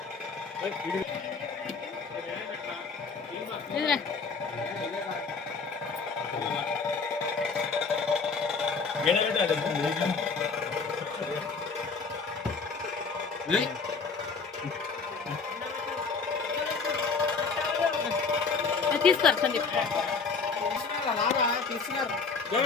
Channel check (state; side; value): quieter; right; 4.8 dB